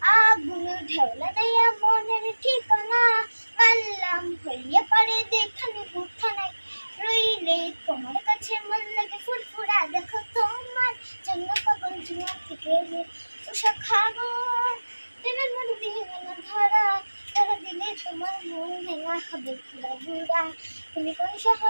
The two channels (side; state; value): both; inverted; correlation -1.00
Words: আগুন ঢেউলা দেয়া মনের ঠিকানা মানলাম হইয়া পারে দেখানে বুথা নাই রইলে তোমার কাছে মন লাগে ফুরফুরা দেখো তোমার জন্য পাগল জুয়া থেকে উষা খাবো প্রেমের মন দিয়ে না ধরা ধরা দিলে তোমার মন ভেঙা হবে পুরা বুড়া তুমি কোন